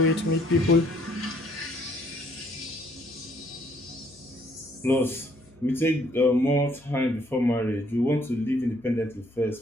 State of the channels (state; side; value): noise; left; hum, 27 dB below the sound